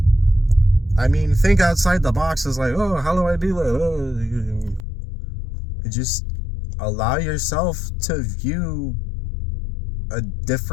I mean, think outside the box is like, oh, how do I do that? You just allow yourself to view a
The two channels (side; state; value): right; drops out; at 4.9 s